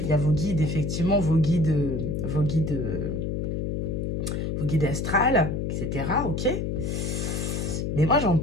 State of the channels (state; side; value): noise; left; hum, 2 dB below the sound